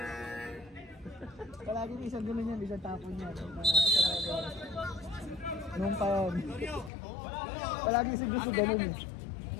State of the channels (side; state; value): right; drops out; at 6.9 s